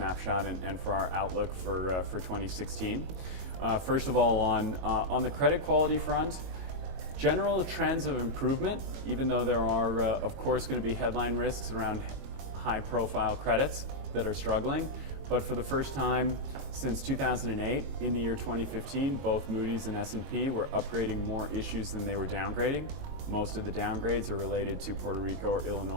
and for our outlook for 2016. First of all, on the credit quality front, general trends of improvement, even though there are, of course, going to be headline risks around high-profile credits that are struggling. But for the first time since 2008, in the year 2015, both Moody's and S&P were upgrading more issues than they were downgrading. Most of the downgrades are related to Puerto Rico or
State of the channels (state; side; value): late; left; 22 ms